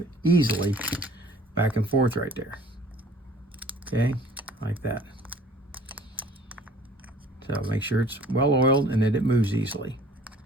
easily back and forth right there. Okay, like that. So make sure it's well oiled and that it moves easily.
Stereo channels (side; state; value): both; normal; correlation 0.51